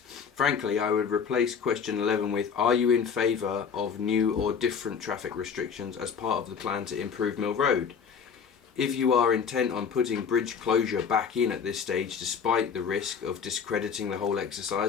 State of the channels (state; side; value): quieter; right; 6.5 dB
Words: I would replace question 11 with, are you in favour of new or different traffic restrictions as part of the plan to improve Mill Road? If you are intent on putting bridge closure back in at this stage, despite the risk of discrediting the whole